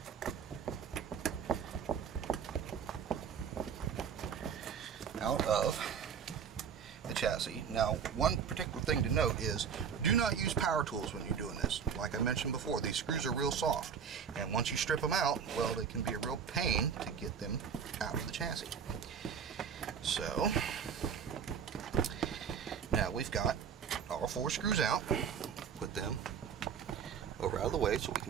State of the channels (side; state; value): left; quieter; 7.2 dB